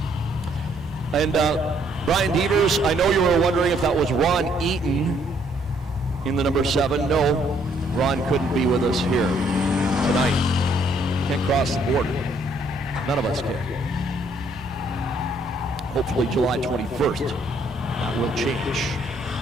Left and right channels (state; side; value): normal; both; correlation 0.67